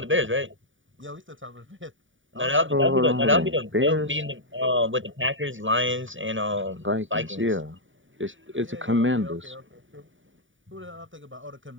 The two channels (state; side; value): late; left; 0.57 ms